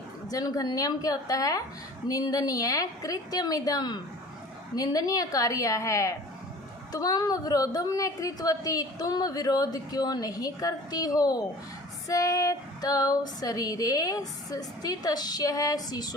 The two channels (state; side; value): normal; both; correlation 0.44